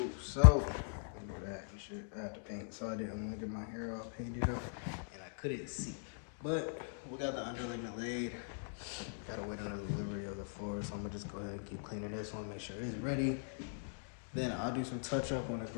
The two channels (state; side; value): silent; right; digital silence